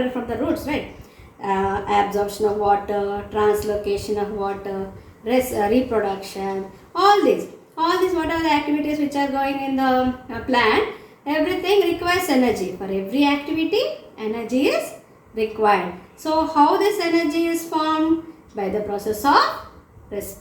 from the roots, right? Absorption of water, translocation of water, reproduction, all these whatever the activities which are going in the plant, everything requires energy. For every activity, energy is required. So how this energy is formed? By the process of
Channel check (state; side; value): identical; both; correlation 1.00